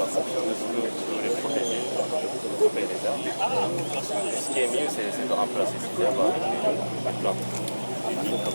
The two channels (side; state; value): both; inverted; correlation -1.00